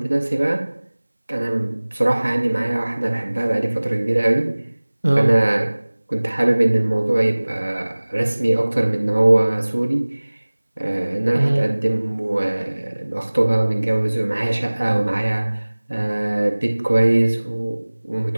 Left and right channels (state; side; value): inverted; both; correlation -1.00